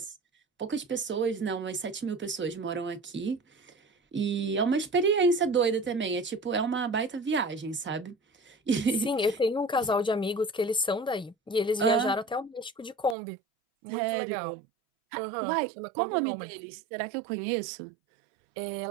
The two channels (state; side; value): drops out; left; at 13.2 s